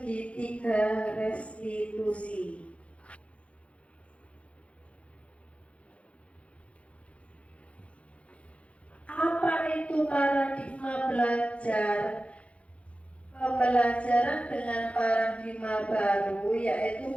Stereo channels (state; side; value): late; right; 0.062 ms